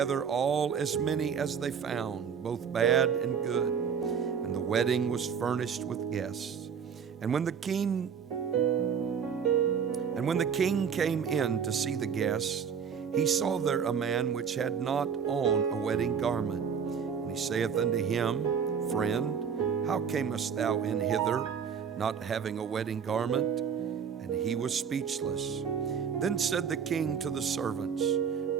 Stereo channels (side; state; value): left; quieter; 7.0 dB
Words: all as many as they found, both bad and good. And the wedding was furnished with guests. And when the king came in to see the guests, he saw there a man which had not on a wedding garment. And he saith unto him, Friend, how camest thou in hither, not having a wedding garment? And he was speechless. Then said the king to the servants,